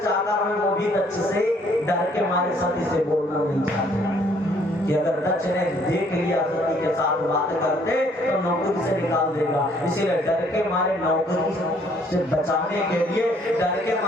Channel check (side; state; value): both; normal; correlation 0.63